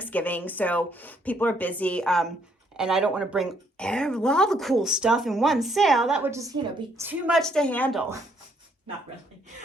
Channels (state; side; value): normal; both; correlation 0.70